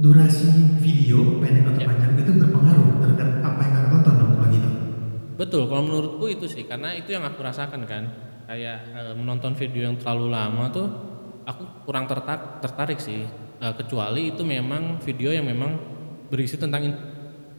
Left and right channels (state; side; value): inverted; both; correlation -1.00